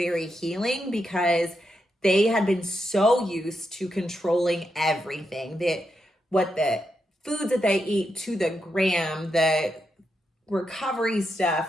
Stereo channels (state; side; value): normal; both; correlation 0.84